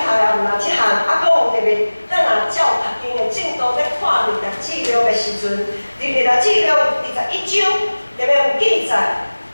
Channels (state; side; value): inverted; both; correlation -1.00